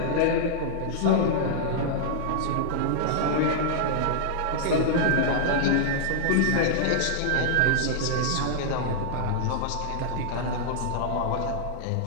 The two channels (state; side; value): different; both; correlation -0.01